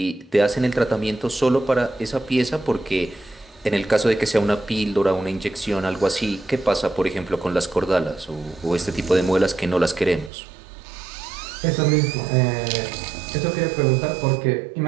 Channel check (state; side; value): drops out; left; at 10.3 s